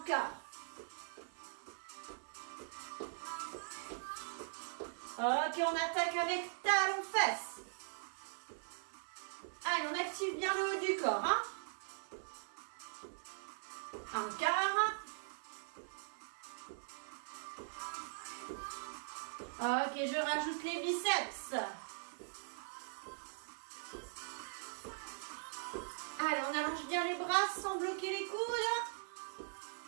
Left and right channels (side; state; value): left; silent; digital silence